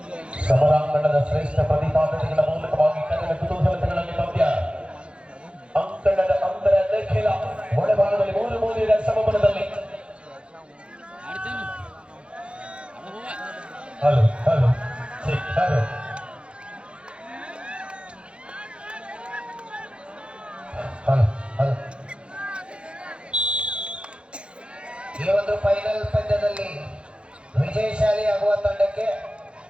ಸಮರಾಂಗಣದ ಶ್ರೇಷ್ಠ ಪ್ರತಿಪಾದನೆಗಳ ಮೂಲಕವಾಗಿ ಕನ್ನಡ ಕುತೂಹಲತೆಗಳಲ್ಲಿ ಪಂದ್ಯ ಅಂಕಣದ ಅಂತರ ನಿಖಿಲ ಒಳಭಾಗದಲ್ಲಿ 3-3 ಸಮಬಲದಲ್ಲಿ. Hello hello hello hello hello ಈ ಒಂದು ಫೈನಲ್ ಪಂದ್ಯದಲ್ಲಿ ವಿಜಯಶಾಲಿ ಆಗುವ ತಂಡಕ್ಕೆ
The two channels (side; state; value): left; late; 0.057 ms